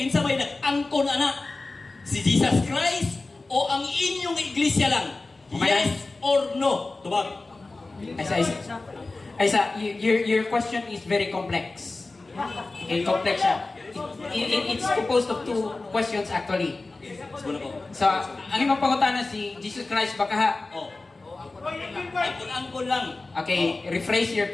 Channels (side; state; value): right; quieter; 3.4 dB